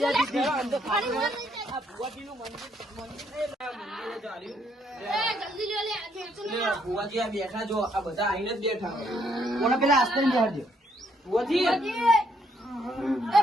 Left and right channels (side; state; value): both; normal; correlation 0.71